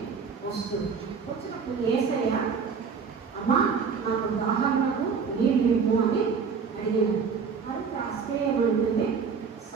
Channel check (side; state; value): left; quieter; 5.8 dB